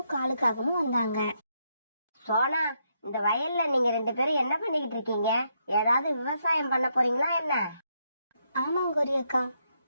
காலுக்காகவும் வந்தாங்க. சோனா, இந்த வயல்ல நீங்க 2 பேரும் என்ன பண்ணிக்கிட்டு இருக்கீங்க? ஏதாவது விவசாயம் பண்ண போறீங்களா என்ன? ஆமாங்க கோரி அக்கா,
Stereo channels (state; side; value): inverted; both; correlation -0.78